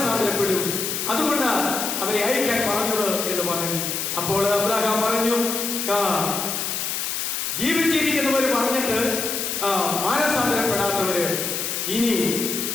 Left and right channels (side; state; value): left; noise; hiss, 2 dB below the sound